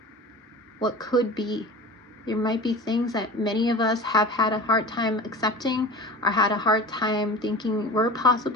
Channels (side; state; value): both; normal; correlation 0.36